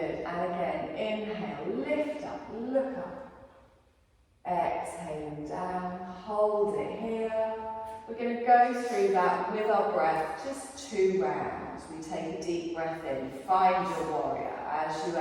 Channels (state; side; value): identical; both; correlation 1.00